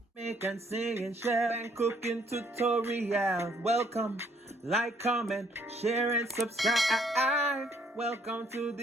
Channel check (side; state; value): both; normal; correlation 0.66